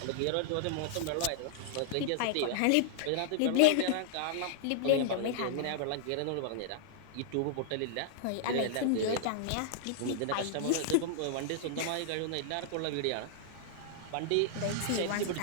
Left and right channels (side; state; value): both; different; correlation -0.01